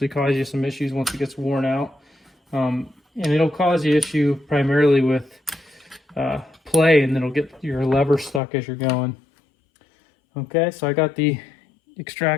cause you some issues once it gets worn out. And it'll cause you issue primarily with play, and it'll get your lever stuck as you're going. Okay, so I got the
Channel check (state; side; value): drops out; right; at 8.4 s